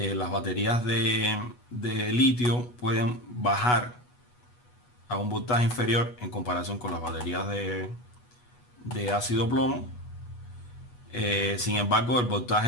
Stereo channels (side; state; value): right; late; 8.2 ms